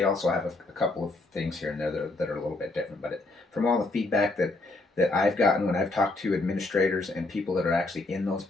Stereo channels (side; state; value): right; quieter; 3.0 dB